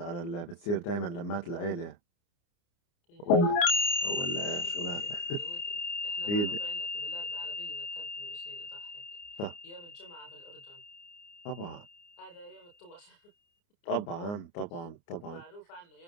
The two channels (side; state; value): right; late; 29 ms